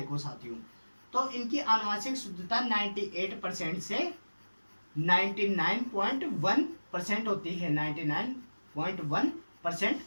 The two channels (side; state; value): both; inverted; correlation -1.00